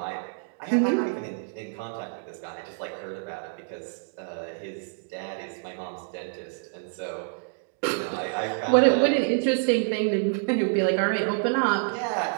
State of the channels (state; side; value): silent; left; digital silence